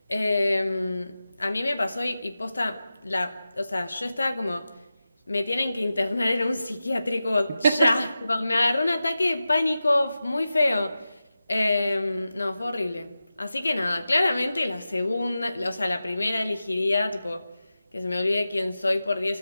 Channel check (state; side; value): inverted; both; correlation -0.93